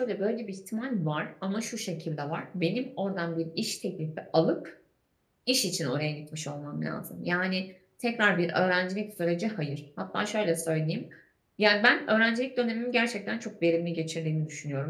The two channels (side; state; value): both; identical; correlation 1.00